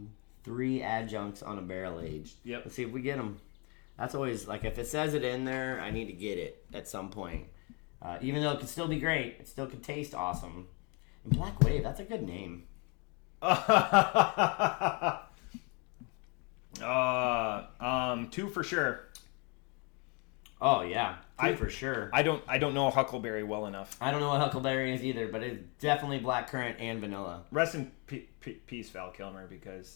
3 adjuncts on a barrel aged. Yep. Let's see if we get them. That's always like if it says it in there, I need to get it at some point. Even though it could still be great, it still could taste awesome. And Black Wave, that's a good name. 2 for sure. Oh yeah, 2 for sure. I don't know Huckleberry well enough. I don't know what Huckleberry is either, but it's definitely blackcurrant and vanilla. Rest in peace, Val Kilmer,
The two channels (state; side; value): quieter; right; 32.3 dB